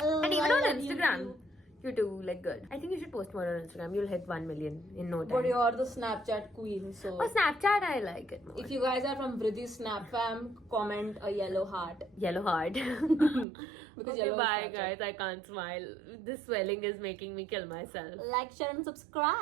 even on Instagram, you do like good. I think you should post more on Instagram. You'll hit 1 million in no time. But you're the Snapchat queen, so. Oh, Snapchat, I like it more. If you guys are from VRIDDHI Snap fam, comment a yellow heart. Yellow heart. Because okay, yellow bye is guys. I can't smile. This swelling is making me kill myself. Like, share and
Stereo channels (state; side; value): drops out; left; at 13.5 s